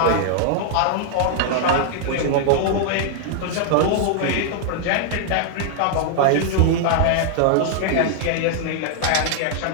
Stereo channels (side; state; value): both; different; correlation -0.01